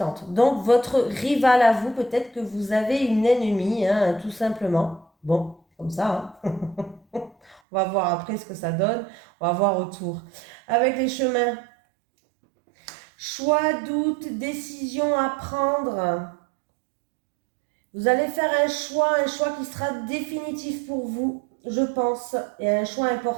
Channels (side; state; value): left; drops out; at 7.6 s